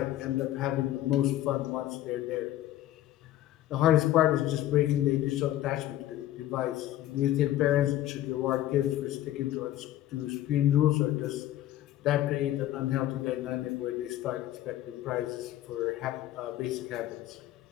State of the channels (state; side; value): quieter; right; 13.5 dB